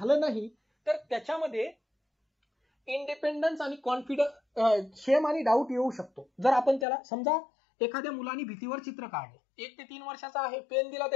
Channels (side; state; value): right; drops out; at 6.9 s